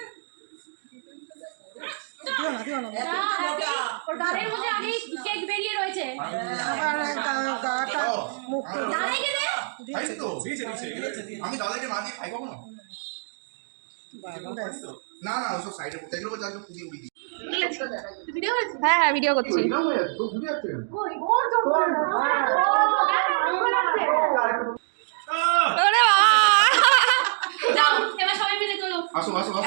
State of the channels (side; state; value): left; silent; digital silence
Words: ওর গালের মধ্যে আগে কেক বেরিয়ে রয়েছে ও, আমার দাদাইকে দে খাইছি তো। দিয়েছে, দিয়েছে। আমি দাদাকে না দিয়ে খাই কখনো? না না ওসব সাইডে পড়তে এগুলো যাকে পুদি উড়ি দিই। তুই ভিডিও করেছিস হ্যাঁ হ্যাঁ ভিডিও করছি। এরকম হয়ে যাচ্ছে, তোর বুঝে যাচ্ছে কেন? কই ওর জন্য ওরে বাবা যাও এবার সবাই মিলে চলো আসো আসো